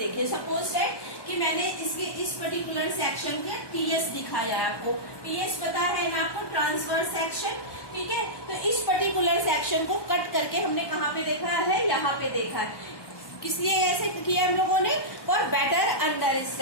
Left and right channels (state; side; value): late; right; 1.1 ms